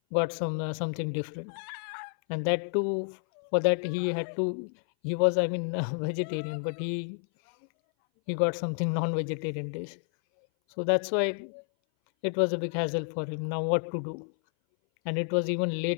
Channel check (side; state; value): right; silent; 58 dB below the other